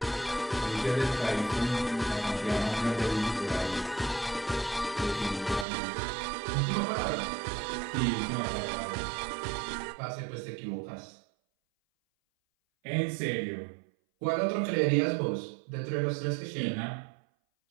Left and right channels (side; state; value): left; drops out; at 5.7 s